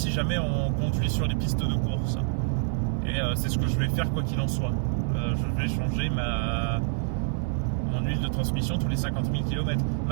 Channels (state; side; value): silent; left; 60 dB below the other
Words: jamais on conduit sur les pistes de course. Et c'est ce que je vais faire quoi qu'il en soit. Je vais changer mon huile de transmission tous les 50 000 km.